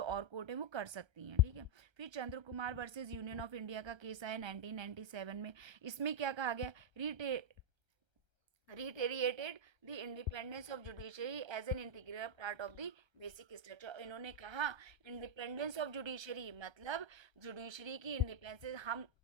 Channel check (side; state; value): left; late; 1.3 ms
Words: और कोर्ट है वो कर सकती हैं, ठीक है। फिर Chandra Kumar versus union of India का केस आया 1997 में। इसमें क्या कहा गया, reiterated the independence of judiciary as an integral part of the basic structure। इन्होंने कहा इंडिपेंडेंस ऑफ जुडिशरी मतलब जुडिशरी की इंडिपेंडेंस, हम